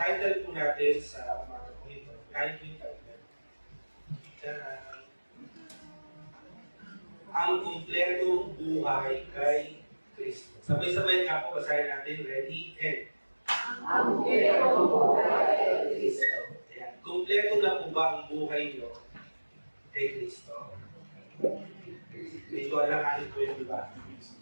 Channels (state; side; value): inverted; both; correlation -1.00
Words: po natin sa umaga po ito, kahit yung title, ang kumpletong buhay kay Kristo. Sabay-sabay nga po, basahin natin, ready, and. Ang kumpletong buhay kay Kristo. Ayan. Kumpleto na po ba ang buhay nyo kay Kristo? Medyo alanganin po yung iba.